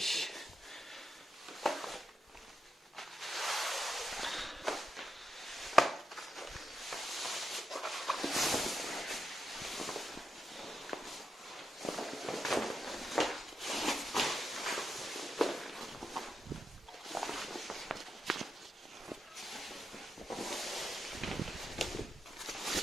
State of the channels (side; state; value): both; normal; correlation 0.86